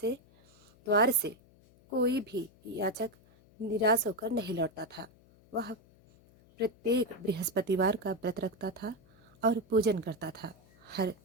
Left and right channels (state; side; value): noise; left; hum, 28 dB below the sound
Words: से कोई भी याचक निराश होकर नहीं लौटता था। वह प्रत्येक बृहस्पतिवार का व्रत रखता था और पूजन करता था। हर